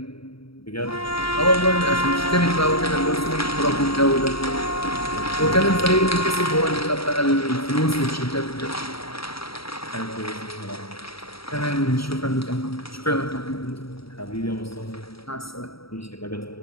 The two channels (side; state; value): right; late; 0.75 ms